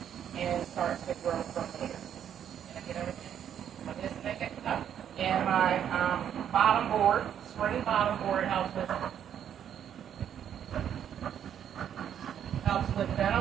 and starts to grow from here. Can I get everything? This thing up. And my bottom board, spring bottom board helps with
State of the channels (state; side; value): quieter; left; 9.4 dB